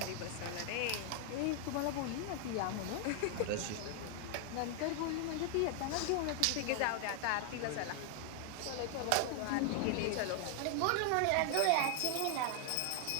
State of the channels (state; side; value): different; both; correlation 0.00